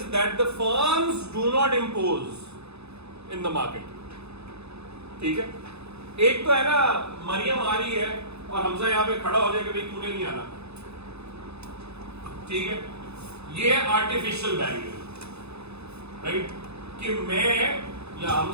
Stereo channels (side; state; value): left; late; 0.79 ms